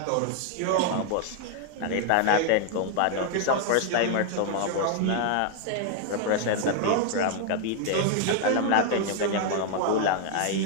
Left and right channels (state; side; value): different; both; correlation 0.00